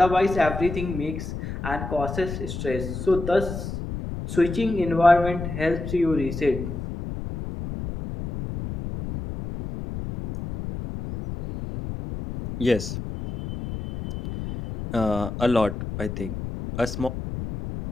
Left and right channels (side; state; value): left; noise; rumble, 7 dB below the sound